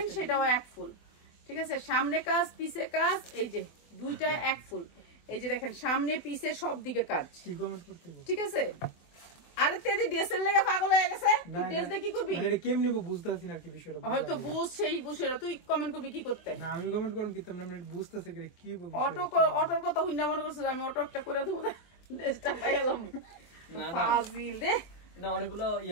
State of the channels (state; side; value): late; right; 23 ms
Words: সেটাও এক ফুল। ঠিক আছে, সামনে কাজ পিছে কাজ, এই যে দুইটা এক ফুল। এই যে দেখেন সামনে পিছে সব দিকে কাজ। ঠিক আছে, আরে তেদি ড্রেসের লেগে পাগল হয়ে গেছে, তুই ড্রেস দিয়ে কি করবি? এটা কেমনে বুঝতাছি না কি বিষয়টা। হয়তো বুঝ সেই বুঝেরা, তুই কমেন্ট করবি কি করতে? না আমি কমেন্ট করব কি তোমরা বুঝতাছে কি বলবো। অটোর কথা হুন্না মনে করছিস আমি অটো একটা করে দেবো, ড্রেসটা পাই গেলাম। ফাজিল দে না, অনেকগুলো